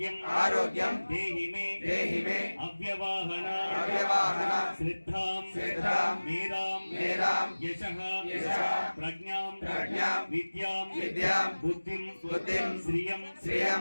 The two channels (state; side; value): inverted; both; correlation -1.00